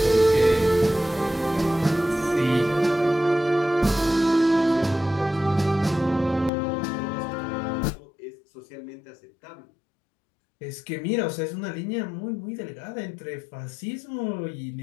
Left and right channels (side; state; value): right; drops out; at 6.5 s